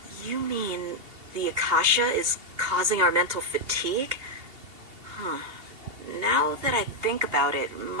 You mean the Akasha is causing our mental fatigue? Huh. Now that I think about it,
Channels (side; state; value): left; late; 2.7 ms